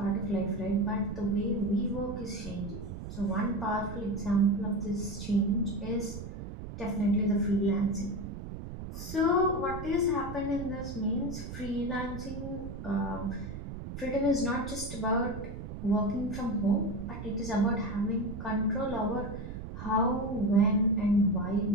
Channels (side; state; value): right; noise; rumble, 9 dB below the sound